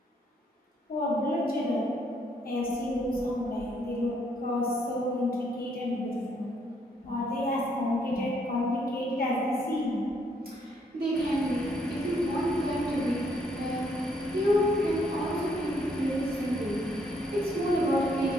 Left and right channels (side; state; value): both; normal; correlation 0.70